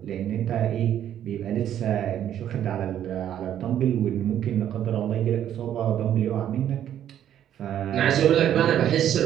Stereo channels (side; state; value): left; quieter; 10.6 dB